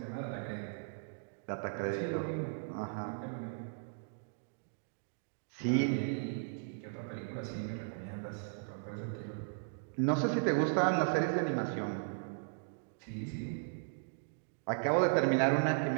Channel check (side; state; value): left; silent; digital silence